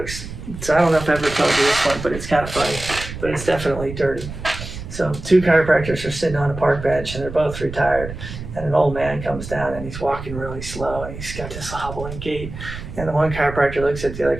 so I don't know if I ever told you this one, but it's kind of funny, but it's definitely dirty. So 2 chiropractors are sitting on a park bench and they're both retired, and an old man comes down and he's walking really slow and he's got this hobbling gait, and the one chiropractor looks at the other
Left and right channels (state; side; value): noise; right; rumble, 10 dB below the sound